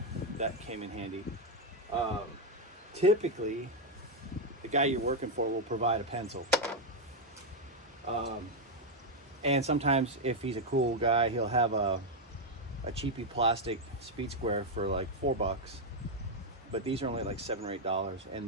that came in handy. Typically, the guy you're working for will provide a pencil. And sometimes if he's a cool guy, he'll have a cheapy plastic speed square for like $4. But these are only like $7 or $8. And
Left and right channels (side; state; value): both; normal; correlation 0.03